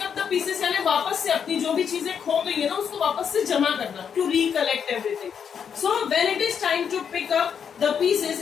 up the pieces यानी वापस से अपनी जो भी चीजें खो गई है ना, उसको वापस से जमा करना, to recollect everything. So when it is time to pick up the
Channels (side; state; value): right; quieter; 7.4 dB